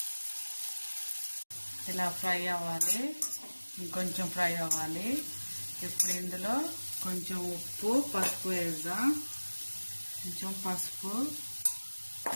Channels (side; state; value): both; inverted; correlation -1.00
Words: ఇలా ఫ్రై అవ్వాలి. ఇంకొంచెం ఫ్రై అవ్వాలి. ఇప్పుడు ఇందులో కొంచెం ఉప్పు పసుపు వేద్దాం. కొంచెం పసుపు,